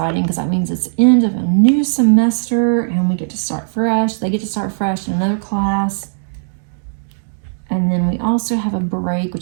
because that means it's the end of a new semester and we get to start fresh. They get to start fresh in another class. And then we also have a break,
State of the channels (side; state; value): left; silent; digital silence